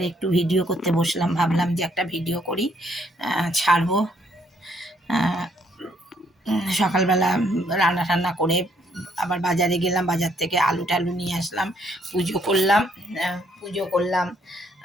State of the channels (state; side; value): normal; both; correlation 0.69